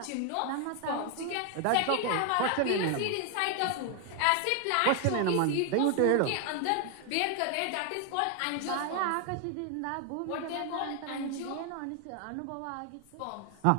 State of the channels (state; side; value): different; both; correlation 0.01